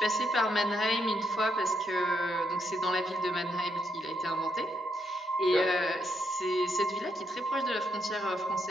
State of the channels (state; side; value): normal; both; correlation 0.78